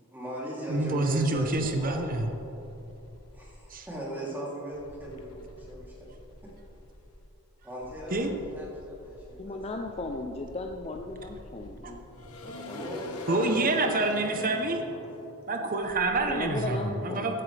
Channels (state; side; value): normal; both; correlation 0.29